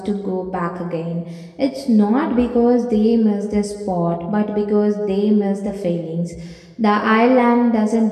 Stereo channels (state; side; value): identical; both; correlation 1.00